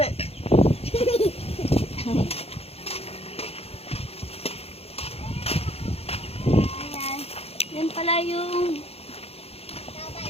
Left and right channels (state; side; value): late; right; 0.29 ms